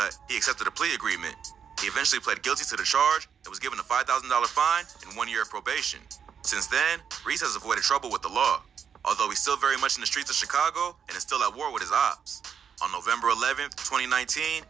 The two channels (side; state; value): left; quieter; 7.4 dB